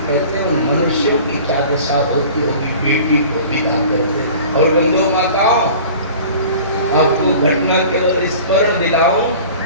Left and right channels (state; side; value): inverted; both; correlation -0.43